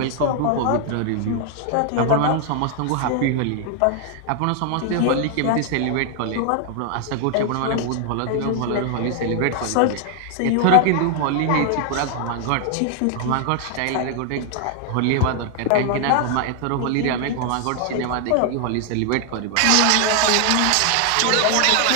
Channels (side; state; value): both; different; correlation 0.00